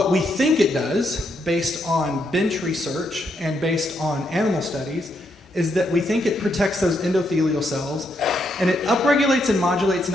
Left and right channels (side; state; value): both; normal; correlation 0.78